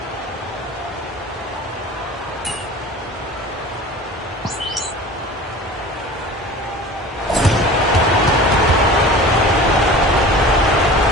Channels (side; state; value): both; normal; correlation 0.39